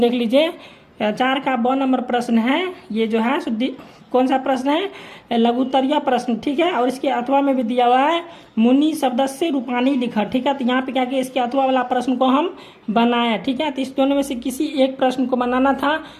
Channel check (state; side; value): identical; both; correlation 1.00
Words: देख लीजिए। 4 का ब नंबर प्रश्न है। ये जो है कौन सा प्रश्न है, लघुत्तरीय प्रश्न, ठीक है। और इसके अथवा में भी दिया हुआ है मुनि शब्द से रूपानी लिखा, ठीक है। तो यहाँ पे क्या किया, इसके अथवा वाला प्रश्न को हम बनाया, ठीक है। तो इस दोनों में से किसी एक प्रश्न को बनाना था,